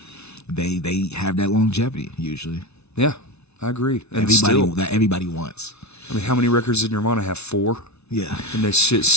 They have that longevity usually. Yeah, I agree. And everybody wants. I mean, how many records did Nirvana have? 4. Yeah. And this shit's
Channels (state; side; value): late; right; 0.81 ms